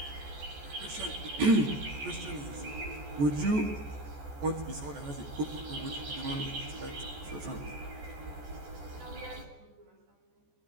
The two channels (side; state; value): left; late; 14 ms